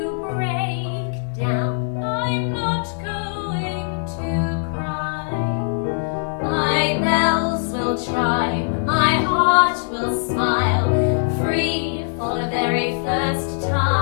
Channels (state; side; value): silent; right; 65 dB below the other